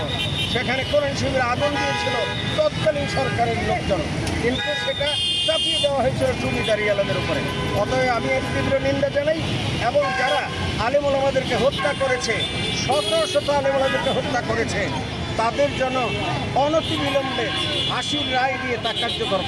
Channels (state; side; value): identical; both; correlation 1.00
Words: সেখানে কোরআন শিবির আগুন দিয়েছিল তৎকালীন সরকারের লোকজন, কিন্তু সেটা চাপিয়ে দেওয়া হয়েছিল জমিদারি আলমের উপরে। অতএব আমি এর তীব্র নিন্দা জানাই এবং যারা আলেম ওলামাদেরকে হত্যা করেছে, শত শত আলেম ওলামাদেরকে হত্যা করেছে, তাদের জন্য অনতিবিলম্বে ফাঁসির রায় দিয়ে তা কার্যকর